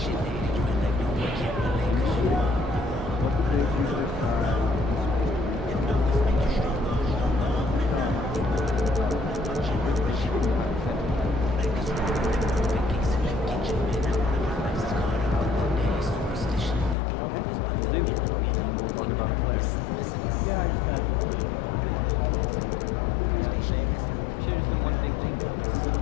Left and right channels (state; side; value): drops out; right; at 16.9 s